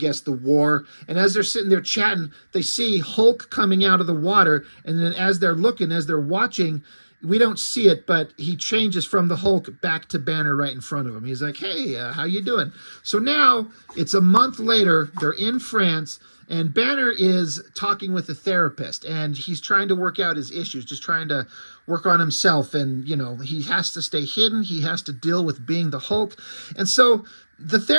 the war. And as they're sitting there chatting, they see Hulk coming out of the water. And then as they're looking, as they're watching, we don't see it, but he changes from the Hulk back to Banner right in front of him. He's like, hey, how you doing? So now it's a month later. They're in France. And Banner is talking with a therapist, and he's trying to work out his issues, just trying to work on himself. And, you know, he has to stay hidden. He has to deal with being the Hulk. And so the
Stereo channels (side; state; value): both; inverted; correlation -1.00